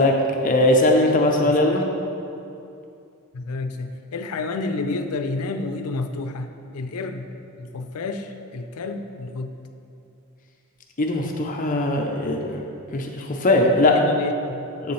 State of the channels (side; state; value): both; normal; correlation 0.16